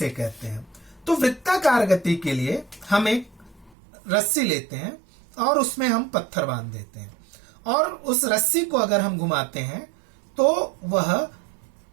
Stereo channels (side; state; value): left; drops out; at 3.8 s